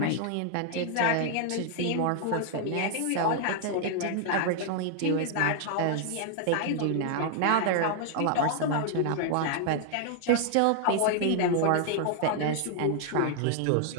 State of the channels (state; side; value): different; both; correlation 0.00